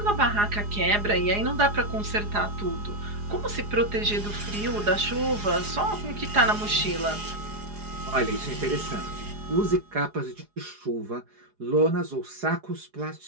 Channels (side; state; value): left; late; 4.8 ms